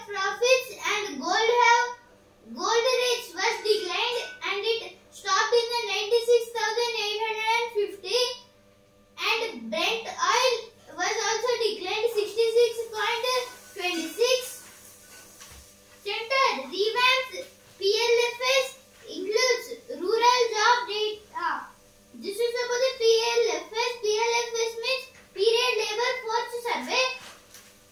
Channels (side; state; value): both; identical; correlation 1.00